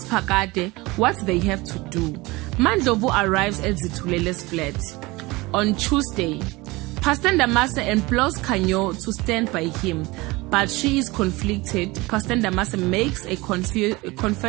Phakade what they have to do. Mandlovu arrives at Zithulele's flat. On Tuesday, Pastor Ndamase implores Khanyo to stand by him, but she is conflicted. Pastor Ndamase makes a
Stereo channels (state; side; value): quieter; left; 22.4 dB